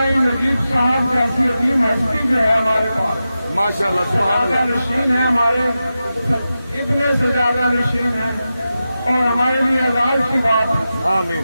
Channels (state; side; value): inverted; both; correlation -0.92